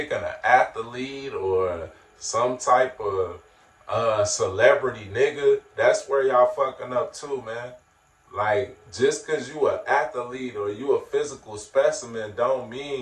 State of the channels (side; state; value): both; identical; correlation 1.00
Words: an athlete or some type of celebrity nigga, that's where y'all fucking up too, man. Like, just because you an athlete or you a physical specimen don't